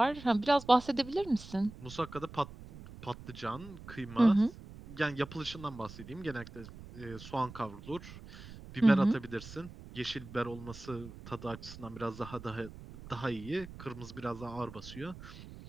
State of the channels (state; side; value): noise; right; rumble, 15 dB below the sound